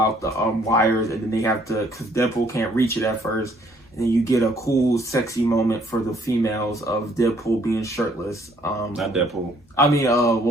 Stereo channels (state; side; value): normal; both; correlation 0.64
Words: the wires, and then they have to, because Deadpool can't reach it at first. And then you get a cool, sexy moment for the females of Deadpool being shirtless. Not Deadpool. I mean,